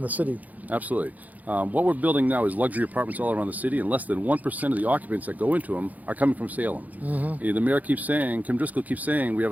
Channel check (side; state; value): left; late; 0.078 ms